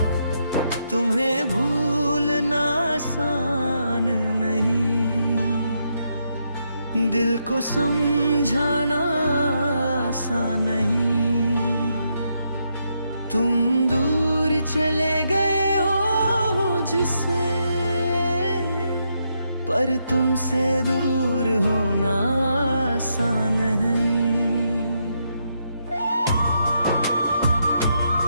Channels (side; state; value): both; inverted; correlation -0.80